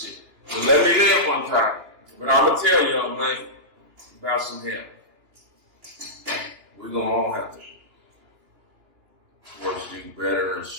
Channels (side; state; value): left; late; 2.8 ms